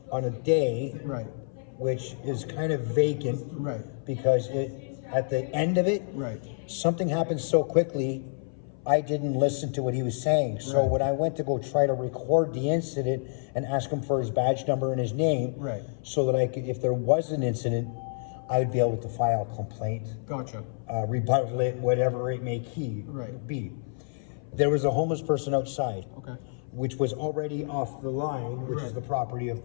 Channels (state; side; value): silent; right; 56 dB below the other